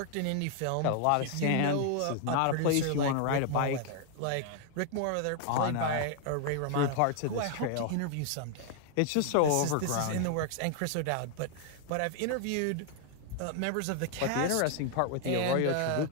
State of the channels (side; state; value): both; different; correlation 0.00